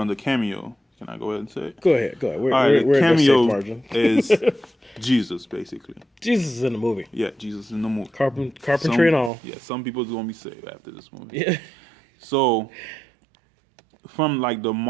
the cameo, can I go ahead and say it? Go ahead. We're the cameo at the safe margin. is Jesus, basically. Jesus is in the movie. Yeah, Jesus is in the movie. Carpentry and all. Yeah, some people's going to be saved after this movie. Yeah. So, from like the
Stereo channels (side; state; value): left; drops out; at 9.3 s